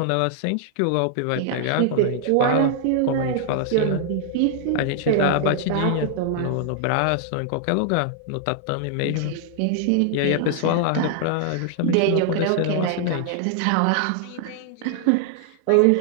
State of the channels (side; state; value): both; different; correlation 0.00